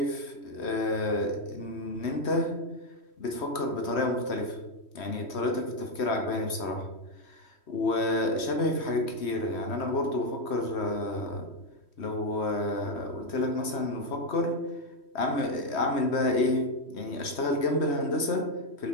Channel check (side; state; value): right; late; 3.1 ms